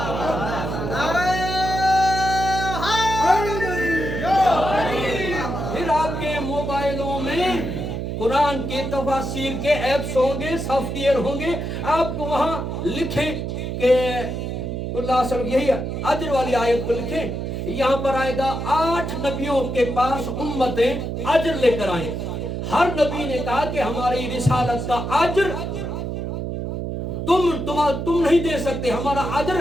फिर आपके मोबाइलों में कुरान के तफसीर के ऐप्स होंगे, सॉफ्टवेयर होंगे, आपको वहां लिखें कि यही अजर वाली आयत को लिखें, यहाँ पर आएगा 8 नबियों के पास उम्मतें अजर लेकर आए। हर नबी ने कहा कि हमारी रिसालत का अजर तुम नहीं दे सकते, हमारा अजर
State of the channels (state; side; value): noise; right; hum, 4 dB below the sound